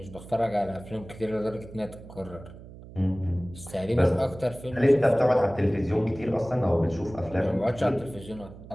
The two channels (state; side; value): noise; right; hum, 17 dB below the sound